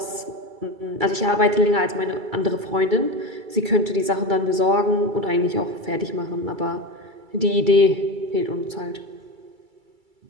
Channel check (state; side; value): late; left; 2.3 ms